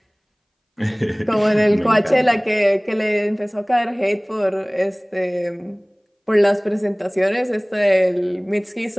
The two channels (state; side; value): identical; both; correlation 1.00